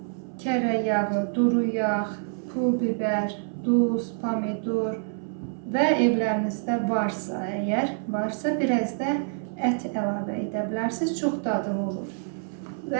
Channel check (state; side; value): silent; left; 58 dB below the other